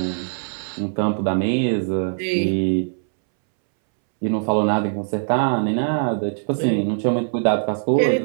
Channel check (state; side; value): silent; left; 65 dB below the other